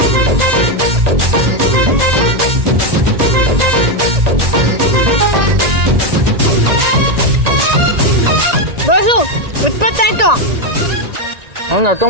ಬಾಸು 20 ಆಯ್ತು. ನಂದು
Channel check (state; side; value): late; left; 1.9 ms